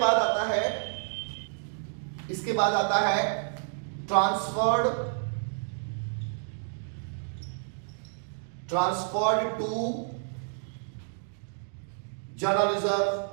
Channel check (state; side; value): silent; left; digital silence